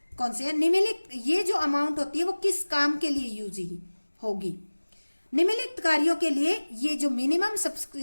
कौन से है निम्नलिखित, ये जो अमाउंट होती है वो किस काम के लिए यूज होगी। निम्नलिखित कार्यों के लिए ये जो मिनिमम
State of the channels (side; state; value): both; inverted; correlation -1.00